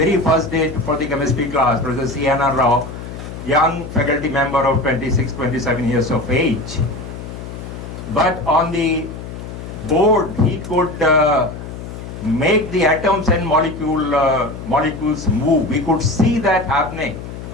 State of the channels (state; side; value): noise; left; hum, 10 dB below the sound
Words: first day for the chemistry class, Professor C.N.R. Rao, young faculty member of 26, 27 years of age. But on the board, he could make the atoms and molecules move. We could see that happening.